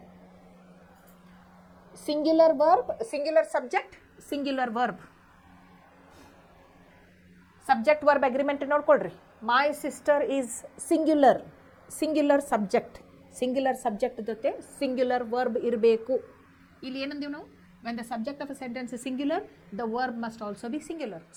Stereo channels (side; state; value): both; identical; correlation 1.00